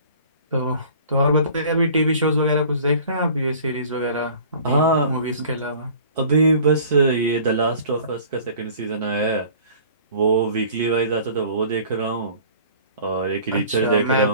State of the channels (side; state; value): both; inverted; correlation -0.48